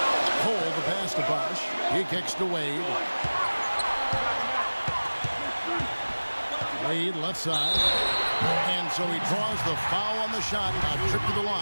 Cole the pass to Bosch. He kicks to Wade. Wade left side. And so he draws the foul on the shot. A trip to the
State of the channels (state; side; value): inverted; both; correlation -1.00